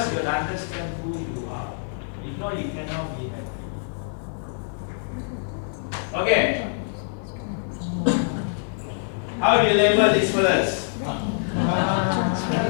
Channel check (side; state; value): right; silent; digital silence